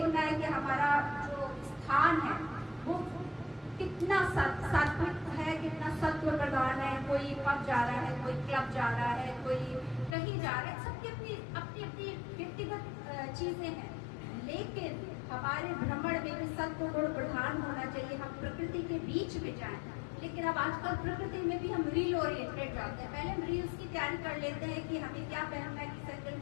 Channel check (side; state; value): right; drops out; at 10.2 s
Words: है कि हमारा जो स्थान है वो कितना सात्विक है, कितना सत्व प्रधान है। कोई पब जा रहा है, कोई क्लब जा रहा है, कोई कहीं जा रहा है। सबकी अपनी अपनी अपनी व्यक्तिगत चीजें हैं, लेकिन हमारे भ्रमण में भी सत्व गुण प्रधान होना चाहिए। हम प्रकृति के बीच में जाएं। लेकिन अब आजकल प्रकृति में भी हम रील ओरिएंटेड जाते हैं। पहले हम रील्स की तैयारी कर लेते हैं कि हमें क्या पहनना है, किस एंगल